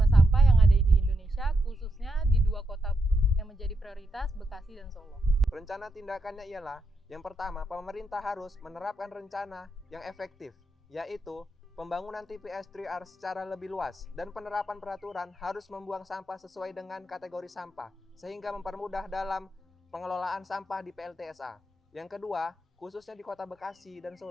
sampah yang ada di Indonesia, khususnya di dua kota yang menjadi prioritas, Bekasi dan Solo. Rencana tindakannya ialah, yang pertama, pemerintah harus menerapkan rencana yang efektif, yaitu pembangunan TPS 3R secara lebih luas dan penerapan peraturan harus membuang sampah sesuai dengan kategori sampah sehingga mempermudah dalam pengelolaan sampah di PLTSA. Yang kedua, khususnya di Kota Bekasi dan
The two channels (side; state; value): both; normal; correlation 0.82